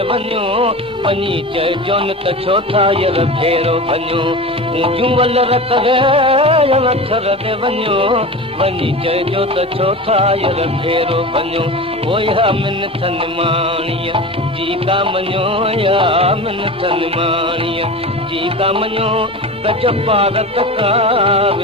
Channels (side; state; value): both; normal; correlation 0.30